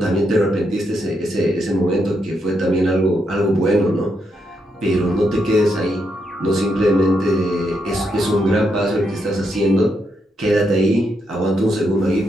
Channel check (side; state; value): both; normal; correlation 0.80